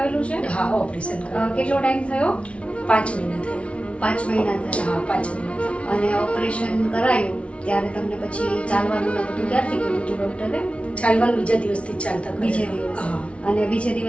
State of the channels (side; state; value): right; late; 0.061 ms